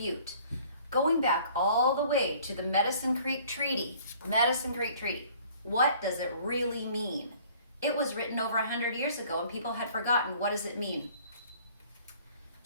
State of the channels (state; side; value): inverted; both; correlation -0.54